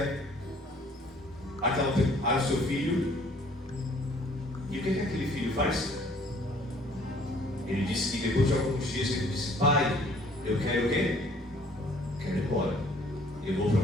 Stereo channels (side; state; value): both; normal; correlation 0.57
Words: ao seu filho. E o que aquele filho faz? Ele disse que depois de alguns dias ele disse: pai, eu quero o quê? Quero ir embora. Eu vou para